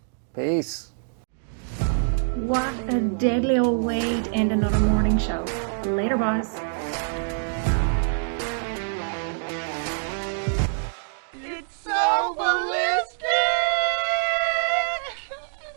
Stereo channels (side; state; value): left; silent; digital silence